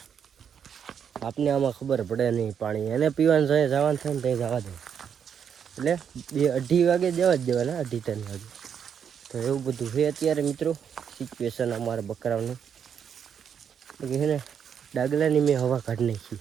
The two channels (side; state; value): left; quieter; 7.8 dB